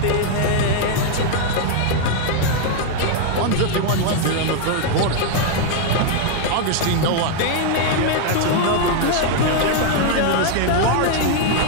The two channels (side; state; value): both; different; correlation 0.00